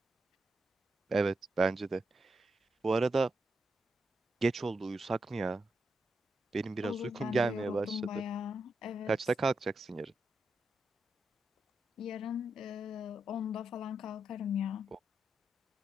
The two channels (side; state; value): both; normal; correlation 0.85